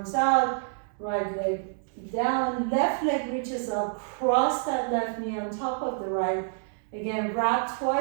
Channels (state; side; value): silent; left; digital silence